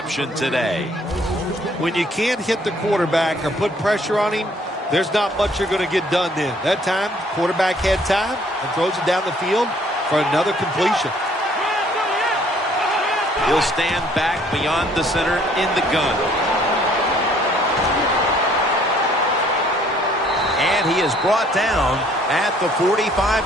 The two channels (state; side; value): normal; both; correlation 0.61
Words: today. When you can't hit the quarterback or put pressure on him, there's not much you're going to get done then. That time, quarterback had time and throws it down the field for another completion. He'll stand back beyond the center in the gun. And he is brought down at the